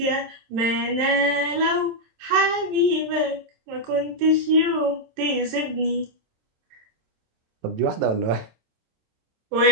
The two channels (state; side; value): late; left; 27 ms